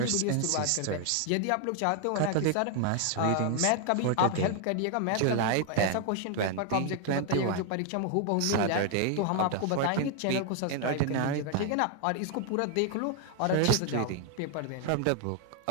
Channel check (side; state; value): both; different; correlation 0.00